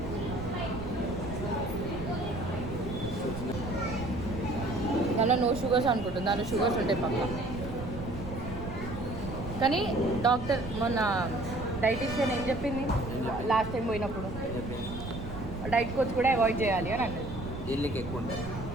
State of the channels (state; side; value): noise; right; rumble, 9 dB below the sound